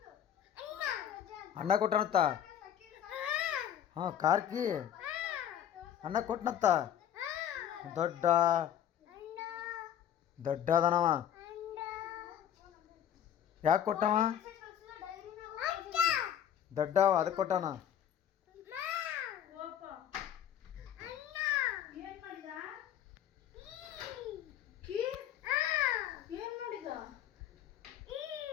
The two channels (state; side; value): quieter; right; 10.1 dB